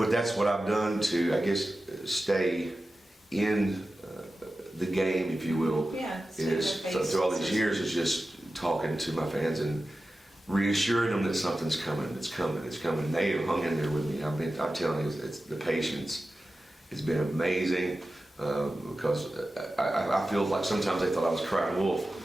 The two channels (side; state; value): both; normal; correlation 0.94